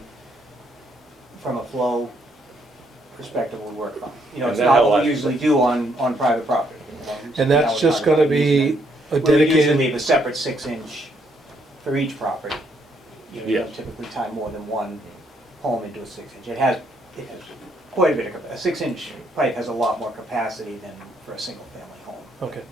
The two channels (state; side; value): normal; both; correlation 0.72